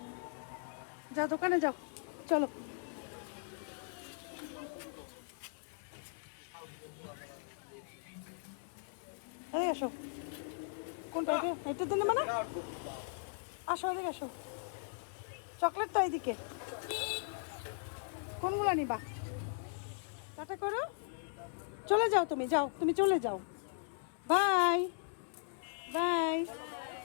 যাও দোকানে যাও, চলো। এই আসো, কোনটা? এটা দিন মানে, আসো এদিকে আসো, চকলেট তো এইদিকে, কোনগুলো নিবা? টাটা করো, চলে যাও, তুমি যাও, তুমি চলে যাও, বাই বাই।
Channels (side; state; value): right; silent; digital silence